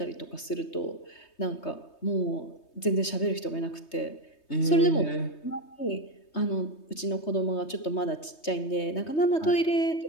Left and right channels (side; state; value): right; late; 3.2 ms